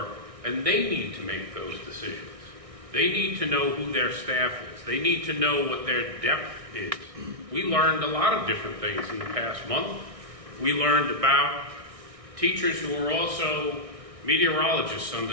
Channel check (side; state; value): left; late; 1.6 ms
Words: and they need to make those decisions. They need to know who their staff is. They need to know what their depth is. We learned a lot of different things in the past month. We learned about teachers who are also meteorologists on